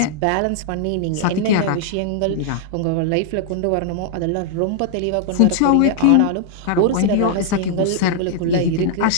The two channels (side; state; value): both; different; correlation -0.01